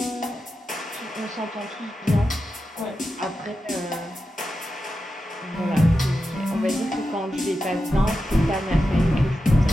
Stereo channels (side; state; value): both; normal; correlation 0.90